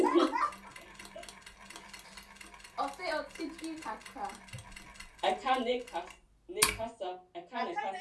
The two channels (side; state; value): both; identical; correlation 1.00